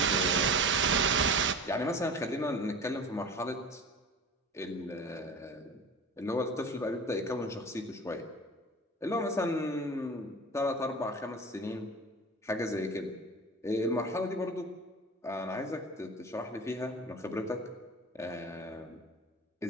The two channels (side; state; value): both; normal; correlation 0.36